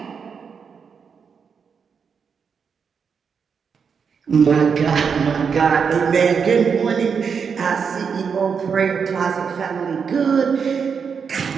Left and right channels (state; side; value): quieter; left; 6.3 dB